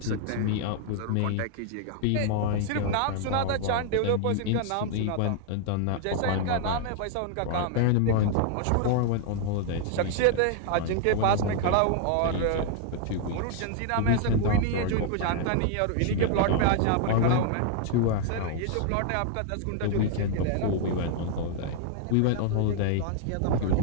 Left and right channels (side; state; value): both; different; correlation 0.00